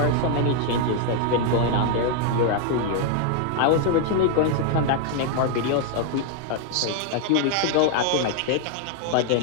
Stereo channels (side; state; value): both; different; correlation 0.00